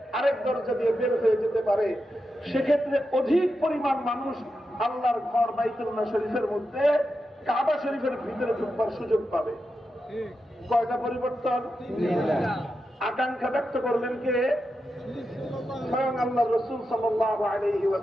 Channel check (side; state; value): both; normal; correlation 0.88